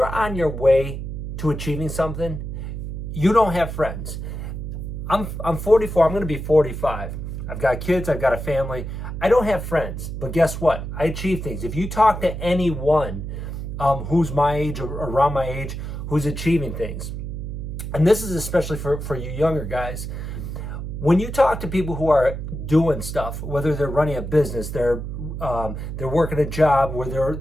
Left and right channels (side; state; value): right; noise; hum, 6 dB below the sound